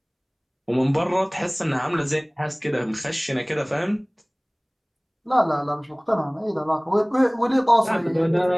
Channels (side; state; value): both; identical; correlation 1.00